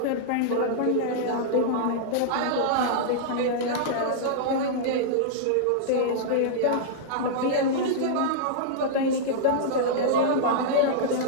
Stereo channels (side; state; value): both; different; correlation -0.02